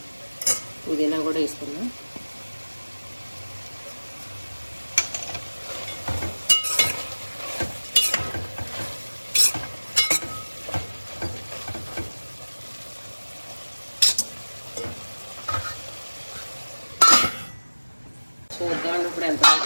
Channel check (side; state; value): both; inverted; correlation -1.00